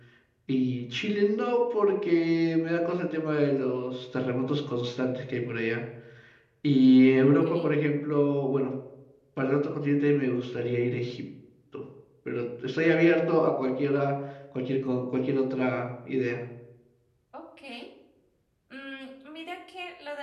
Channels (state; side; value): identical; both; correlation 1.00